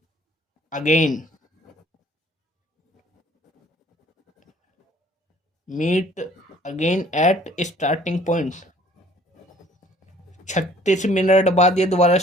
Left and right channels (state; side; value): normal; both; correlation 0.56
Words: again, meet again at starting point. 36 minute बाद ये दोबारा